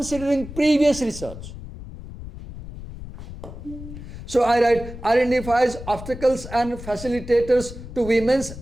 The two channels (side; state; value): left; noise; rumble, 12 dB below the sound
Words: previous research. So I write, identifies obstacles and facilitators to women's